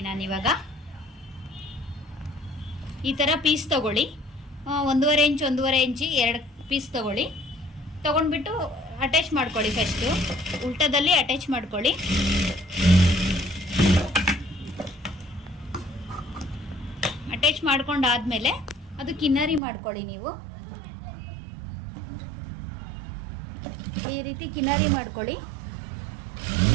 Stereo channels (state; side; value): drops out; left; at 19.6 s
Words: ನಾನಿವಾಗ. ಈ ಥರ ಪೀಸ್ ತಗೊಳ್ಳಿ, 1.5 ಇಂಚ್ 1.5 ಇಂಚಿ 2 ಪೀಸ್ ತಗೊಳ್ಳಿ. ತೊಗೊಂಡ್ಬಿಟ್ಟು ಅಟ್ಯಾಚ್ ಮಾಡ್ಕೊಳ್ಳಿ. ಫಸ್ಟು ಉಲ್ಟದಲ್ಲಿ ಅಟ್ಯಾಚ್ ಮಾಡ್ಕೊಳ್ಳಿ. ಅಟ್ಯಾಚ್ ಮಾಡ್ಕೊಂಡಾದ್ಮೇಲೆ ಅದು ಕಿನ್ನರಿ ಮಾಡ್ಕೊಳ್ಳಿ. ನೀವು ಈ ರೀತಿ ಕಿನ್ನರಿ ಮಾಡ್ಕೊಳ್ಳಿ.